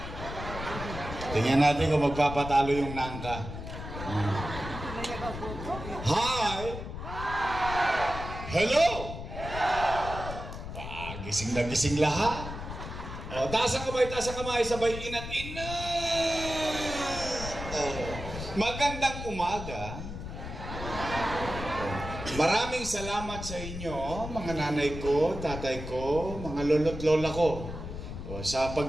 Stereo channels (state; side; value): noise; left; rumble, 8 dB below the sound